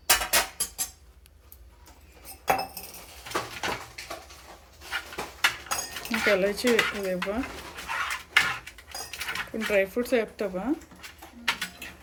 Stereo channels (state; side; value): identical; both; correlation 1.00